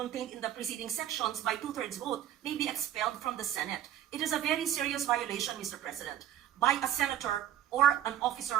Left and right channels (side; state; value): left; quieter; 11.1 dB